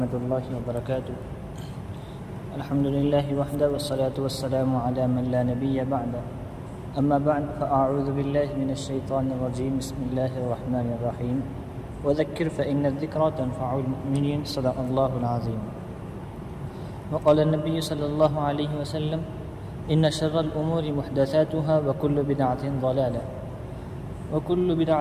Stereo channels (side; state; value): both; identical; correlation 1.00